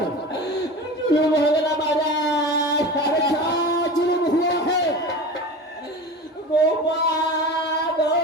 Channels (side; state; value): both; normal; correlation 0.32